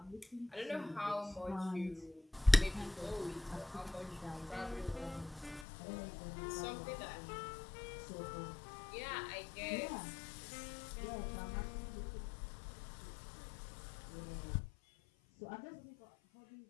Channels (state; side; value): drops out; right; at 5.7 s